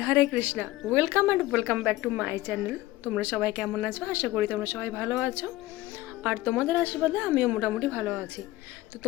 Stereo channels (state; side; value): quieter; right; 17.6 dB